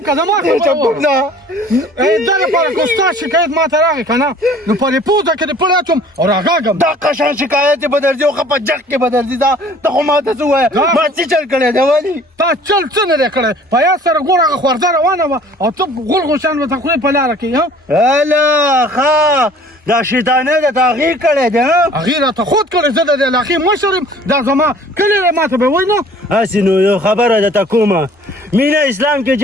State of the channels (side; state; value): both; normal; correlation 0.51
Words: که زما چپ کوم نه دا لپاره که ستا شکایت ما ته راغی که نه نو په دې پوزه کې دې پړی اچوم او راغاږم دا قشان شکایت به درځي او ښه په جګ کې به درځي دا ته خو ما ته څه ووایه ما څه چل کړی دی ولې تا چل څه نه دی کړی په یاد سره ګوره هغه خورځه روانه وه او ته غول غوشان ورته خولې په لاره کې هله ښه دا شیطانه ده تا هغې کړی دی هغې راته خود کړی زه د دې علاقې مشر یم دا زما کلی دی ما ته به وایي نه هسې نو یو خبره درته کومه مینه اسلام کې